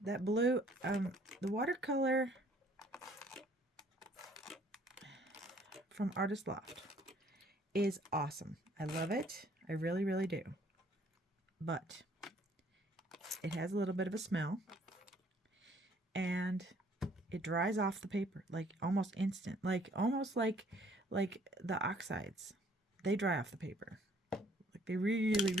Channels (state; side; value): normal; both; correlation 0.60